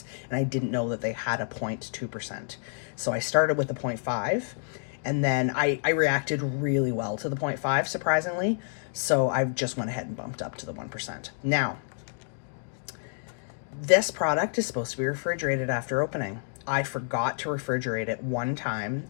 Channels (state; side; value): silent; right; digital silence